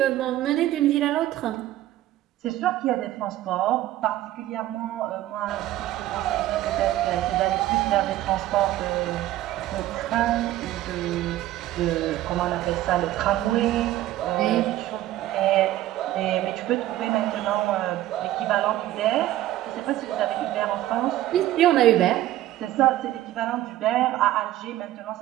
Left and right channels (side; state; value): left; quieter; 14.5 dB